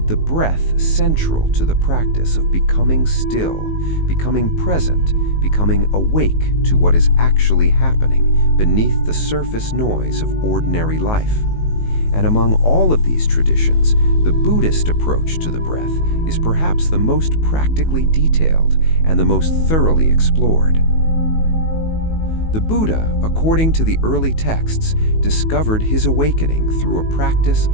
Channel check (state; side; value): late; right; 19 ms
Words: the breath central to the practice of becoming still, becoming present, becoming awake to what is actually happening beneath the surface noise of ordinary life. And among all of these traditions, the Buddhist approach to the breath is perhaps the most practically detailed and the most thoroughly explored. The Buddha, according to the early texts, discovered his awakening through a practice